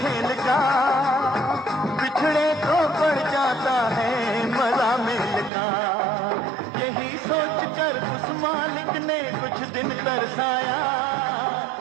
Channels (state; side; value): drops out; left; at 5.5 s